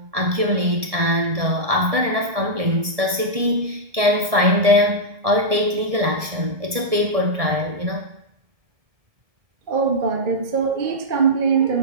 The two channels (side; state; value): left; late; 1.7 ms